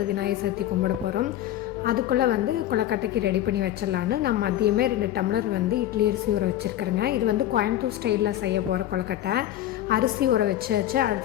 விநாயகர் சதுர்த்தி கும்பிட போகிறோம். அதுக்குள்ளே வந்து கொலக்கட்டைக்கு ரெடி பண்ணி வச்சிடலான்னு நான் மதியமே 2 டம்ளர் வந்து இட்லி அரிசி ஊற வச்சுருக்கிறேங்க. இது வந்து கோயம்புத்தூர் ஸ்டைலில் செய்ய போகிற கொலக்கட்டை. அரிசி ஊற வச்சு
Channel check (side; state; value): right; quieter; 12.8 dB